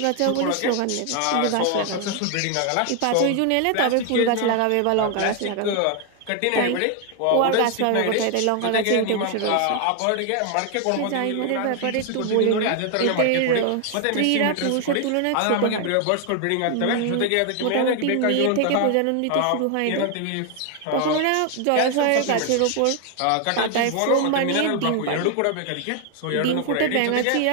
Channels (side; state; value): both; different; correlation 0.00